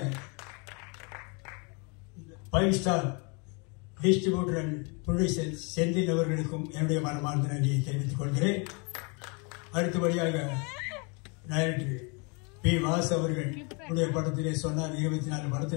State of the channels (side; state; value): right; quieter; 32.9 dB